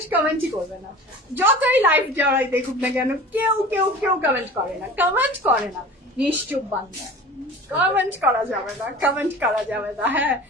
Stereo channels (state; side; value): normal; both; correlation 0.39